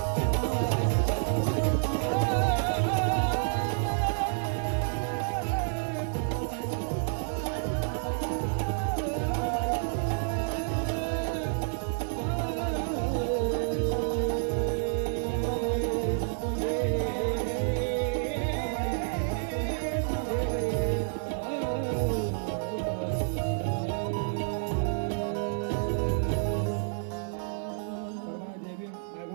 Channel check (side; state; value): left; silent; digital silence